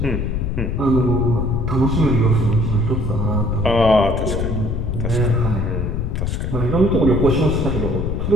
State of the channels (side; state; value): left; noise; rumble, 1 dB below the sound